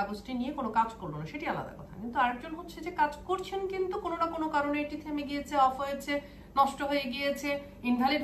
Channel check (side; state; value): both; identical; correlation 1.00